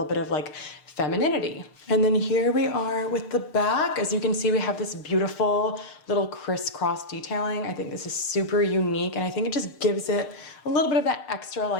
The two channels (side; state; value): right; late; 6.6 ms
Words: bit of like femininity. And then here we are with the back. As you can see, we have this beautiful little crisscross detailing. I think this is super unique, and I think it just gives it a little bit of that extra